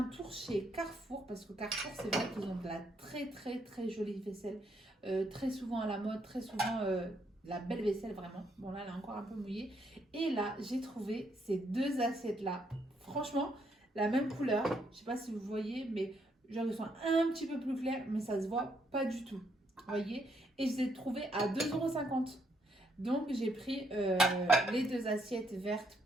tour chez Carrefour, parce que Carrefour, c'est vrai qu'ils ont de la très très très jolie vaisselle, très souvent à la mode, très souvent la belle vaisselle vraiment. Bon là, elle est encore un peu mouillée. Et là, j'ai trouvé ces deux assiettes-là. Franchement, la même couleur. Je sais pas si vous voyez, mais genre ils sont un petit peu plus clairs, mais ça se voit pas du tout. Vous voyez? Et je les ai trouvées à 2,50 €. Donc j'ai pris les deux assiettes vertes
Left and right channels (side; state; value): both; normal; correlation 0.74